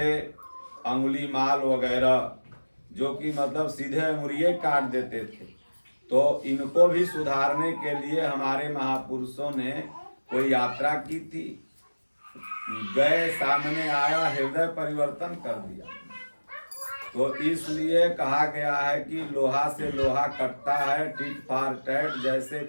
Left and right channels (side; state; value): both; inverted; correlation -1.00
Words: अंगुली माल वगैरह, जो कि मतलब सीधे अंगुलियां काट देते थे। तो इनको भी सुधारने के लिए हमारे महापुरुषों ने कोई यात्रा की थी, गए, सामने आया, हृदय परिवर्तन कर दिया। तो इसलिए कहा गया है कि लोहा से लोहा कटता है, टिट फॉर टैट, जैसे